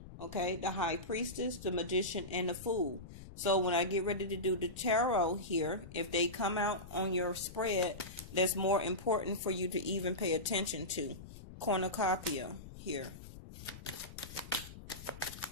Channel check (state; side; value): noise; left; rumble, 14 dB below the sound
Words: okay, the High Priestess, the Magician, and the Fool. So when I get ready to do the tarot here, if they come out on your spread, that's more important for you to even pay attention to. Cornucopia here.